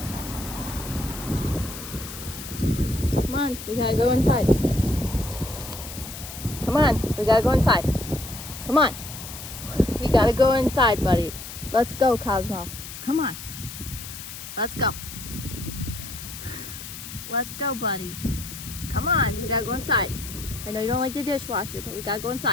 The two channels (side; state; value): left; noise; hiss, 11 dB below the sound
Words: Come on, we gotta go inside. Come on, we gotta go inside. Come on. We gotta go inside, buddy. Let's go, Cosmo. Come on. Let's go. Let's go, buddy. Come on, we gotta go inside. I know you don't like the dishwasher, but we gotta go